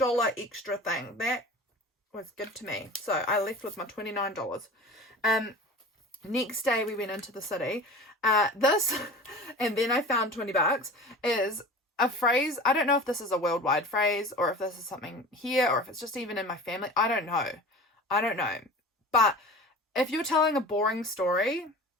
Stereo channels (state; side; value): normal; both; correlation 0.37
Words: extra thing. That was good to me. So I left with my $29. Next day we went into the city. This, and then I found $20, is a phrase. I don't know if this is a worldwide phrase or if this is something here or if it's just even in my family. I don't know. But if you're telling a boring story